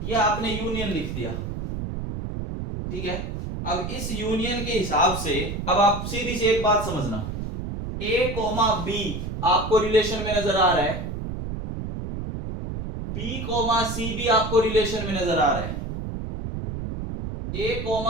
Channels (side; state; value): right; noise; rumble, 5 dB below the sound